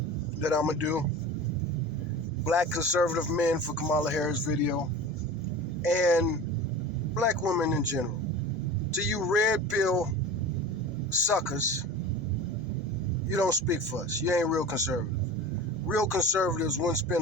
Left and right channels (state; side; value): noise; right; hum, 22 dB below the sound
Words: that I'm going to do. Black conservative men for Kamala Harris video. And black women in general. To you red pill suckers, you don't speak for us. You ain't real conservative. Real conservatives wouldn't